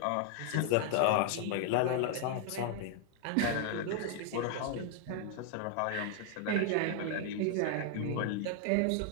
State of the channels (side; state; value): both; different; correlation 0.00